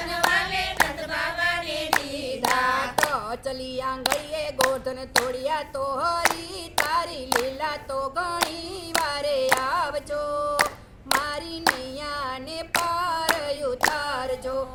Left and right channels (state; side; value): identical; both; correlation 1.00